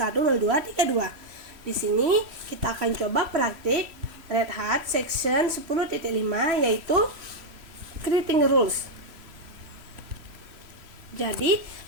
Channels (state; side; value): late; left; 3.0 ms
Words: Di sini kita akan coba praktik Red Hat section 10.5 yaitu creating rules. Jadi